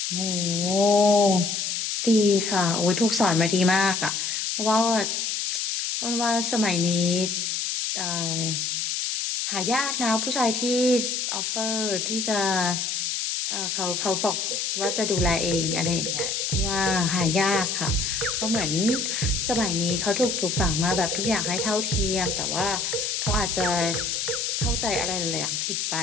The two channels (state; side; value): noise; left; hiss, 1 dB below the sound